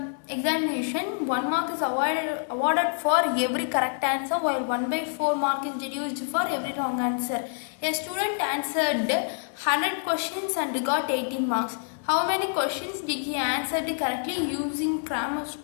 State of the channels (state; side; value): silent; right; 60 dB below the other